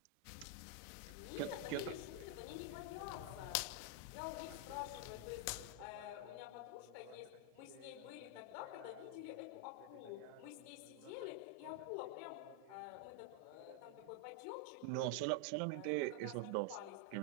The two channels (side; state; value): both; different; correlation 0.00